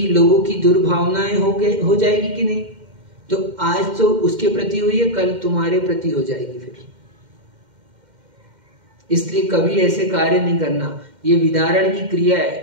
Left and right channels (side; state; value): left; late; 2.1 ms